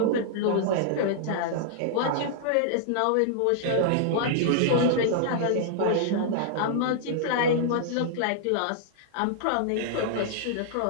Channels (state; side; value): different; both; correlation -0.01